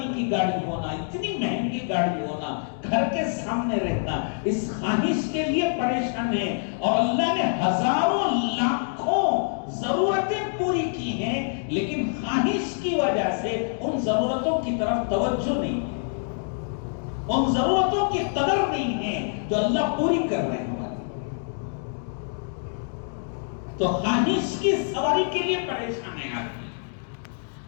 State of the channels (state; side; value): silent; right; digital silence